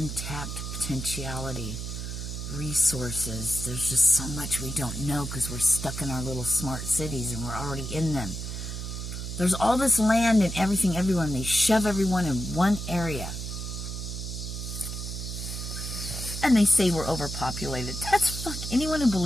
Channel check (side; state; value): right; noise; hum, 6 dB below the sound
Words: potentiality, resources. There's just so much we don't know because we're stuck in our little smart cities and we're already in them. There's all this land and everything everywhere, and they shove everyone in one area. And they say we're overpopulated. That's fuck. Anyone who